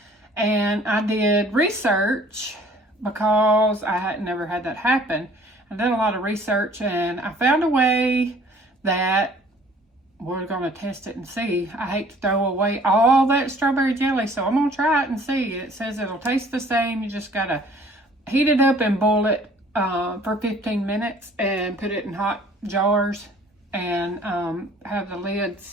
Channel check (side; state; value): both; normal; correlation 0.55